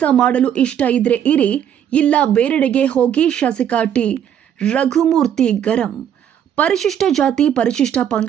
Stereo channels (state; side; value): quieter; left; 9.4 dB